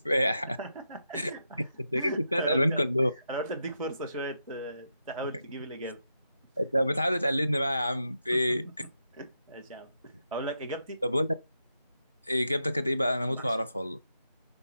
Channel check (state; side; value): inverted; both; correlation -0.85